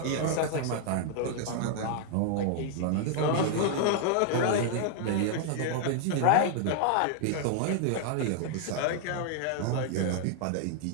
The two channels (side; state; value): both; different; correlation 0.00